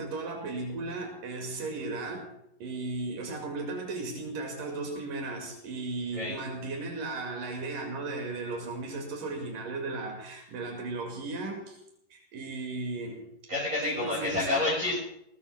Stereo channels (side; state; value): left; late; 11 ms